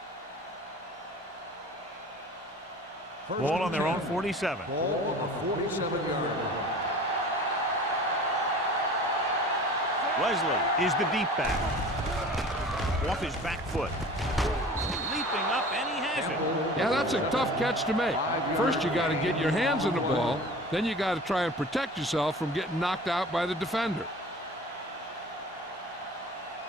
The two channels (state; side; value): normal; both; correlation 0.41